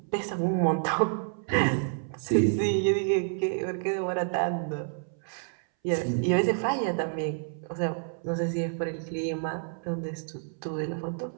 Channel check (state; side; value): silent; left; 59 dB below the other